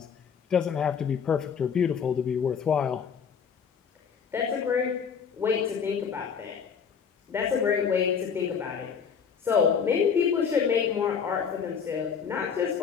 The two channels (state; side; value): quieter; right; 6.8 dB